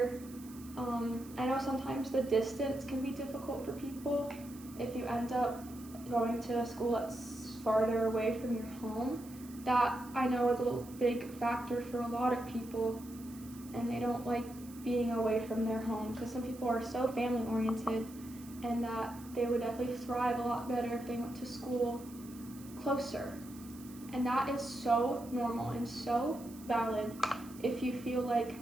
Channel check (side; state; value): right; noise; hiss, 20 dB below the sound